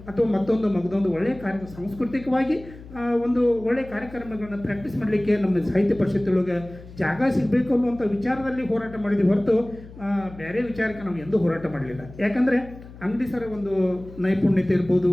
ಅಥವಾ ಮಗದೊಂದು ಒಳ್ಳೆಯ ಸಾಂಸ್ಕೃತಿಕವಾಗಿ ಒಂದು ಒಳ್ಳೆಯ ಕಾರ್ಯಕ್ರಮಗಳನ್ನು ಪ್ರಾಕ್ಟೀಸ್ ಮಾಡಲಿಕ್ಕೆ ನಮ್ಮ ಸಾಹಿತ್ಯ ಪರಿಷತ್ತೊಳಗೆ ಜಾಗ ಸಿಗಬೇಕು ಅನ್ನುವಂಥ ವಿಚಾರದಲ್ಲಿ ಹೋರಾಟ ಮಾಡಿದ್ವಿ ಹೊರತು ಬೇರೆ ವಿಚಾರಕ್ಕೆ ನಾವು ಎಂದೂ ಹೋರಾಟ ಮಾಡಲಿಲ್ಲ. ಯಾಕಂದರೆ ಅಂಗಡಿ ಸರ ಒಂದು ನೈಪುಣ್ಯತೆ ಇರ್ಬೋದು,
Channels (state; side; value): noise; left; hum, 18 dB below the sound